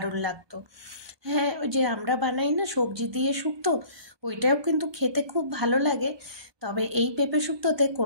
লাগতো। হ্যাঁ, ওই যে আমরা বানাই না সবজি দিয়ে শুক্তো, ওইটাও কিন্তু খেতে খুব ভালো লাগে। তবে এই পেঁপে শুক্তোতে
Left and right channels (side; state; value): left; late; 1.2 ms